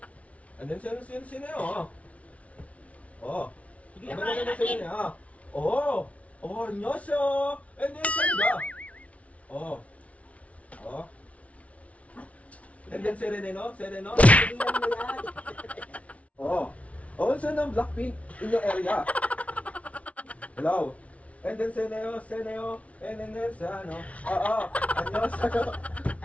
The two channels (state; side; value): late; right; 0.065 ms